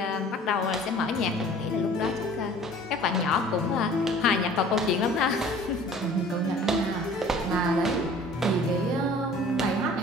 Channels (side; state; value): both; normal; correlation 0.48